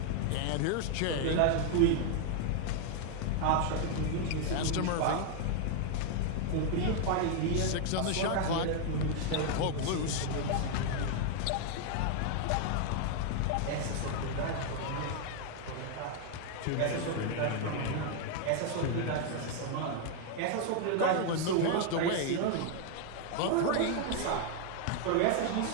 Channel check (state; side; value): different; both; correlation 0.00